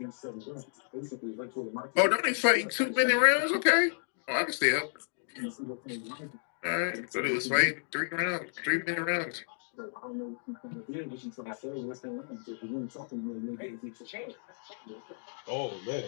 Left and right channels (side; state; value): right; silent; digital silence